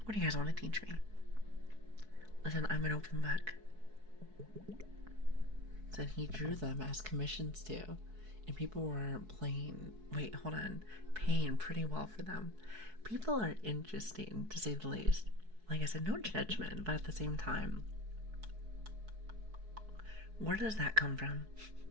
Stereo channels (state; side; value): late; left; 4.6 ms